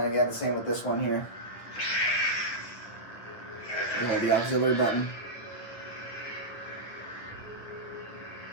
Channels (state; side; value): late; right; 9.4 ms